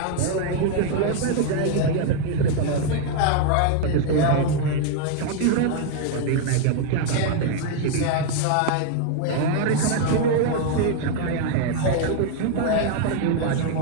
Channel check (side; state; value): both; different; correlation 0.01